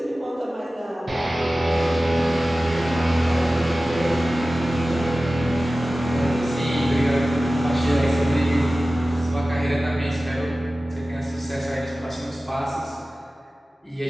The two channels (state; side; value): normal; both; correlation 0.96